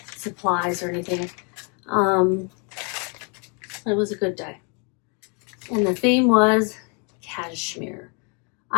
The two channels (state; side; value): quieter; right; 35.9 dB